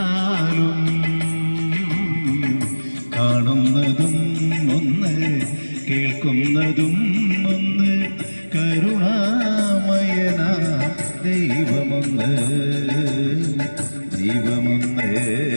കാണുന്നതും ഒന്ന് കേൾക്കുന്നതും ഒന്ന് കരുണാമയന ദൈവമൊന്ന് ദൈവമൊന്ന്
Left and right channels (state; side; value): inverted; both; correlation -1.00